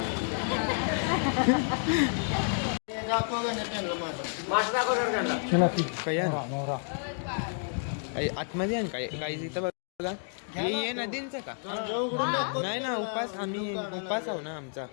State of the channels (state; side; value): silent; right; 58 dB below the other